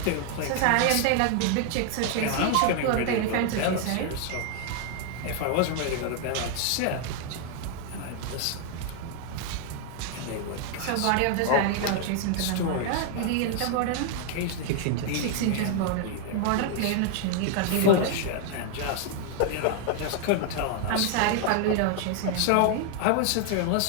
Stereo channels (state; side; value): different; both; correlation 0.00